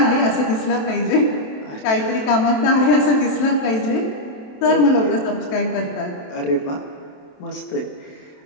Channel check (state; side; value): late; right; 27 ms